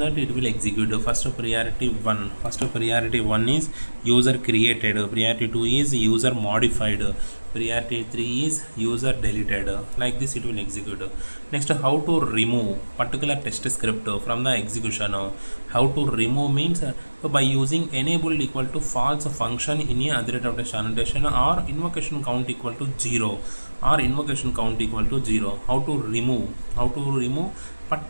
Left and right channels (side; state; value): both; inverted; correlation -1.00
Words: it will execute. First priority 1 is user created, priority 2 is user modified, priority 3 is user deleted. Like this it will execute. Next, how to remove particular test script from the execution. How to remove means by using enabled equal to false function in a other rate of test annotation, or invocation count equal to 0, or invocation count equal to 0. How to remove